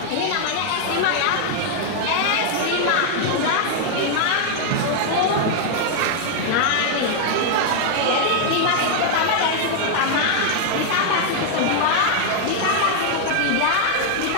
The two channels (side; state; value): both; different; correlation 0.00